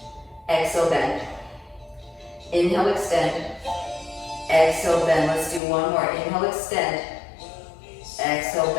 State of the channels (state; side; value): drops out; right; at 5.6 s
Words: Exhale, bend. Inhale, extend. Exhale, bend. Let's do one more. Inhale, extend. Exhale,